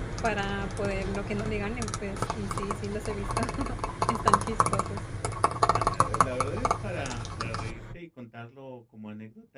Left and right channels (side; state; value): both; identical; correlation 1.00